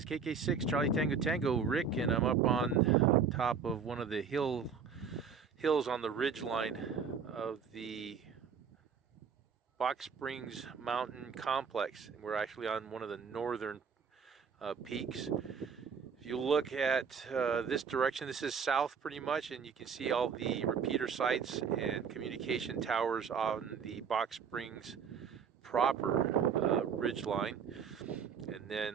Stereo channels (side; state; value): left; quieter; 6.3 dB